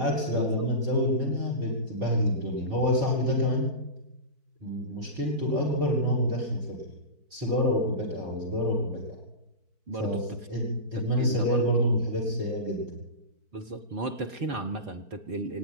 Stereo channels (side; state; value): left; late; 4.5 ms